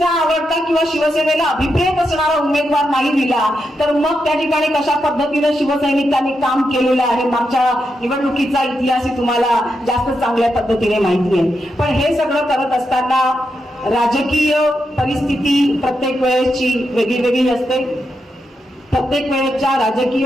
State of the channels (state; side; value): normal; both; correlation 0.85